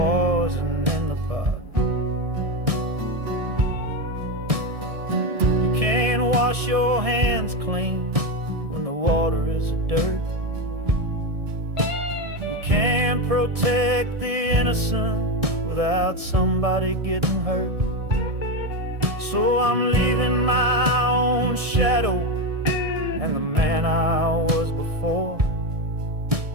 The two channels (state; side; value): late; left; 1.7 ms